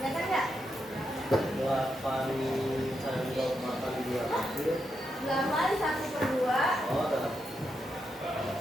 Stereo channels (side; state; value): both; normal; correlation 0.83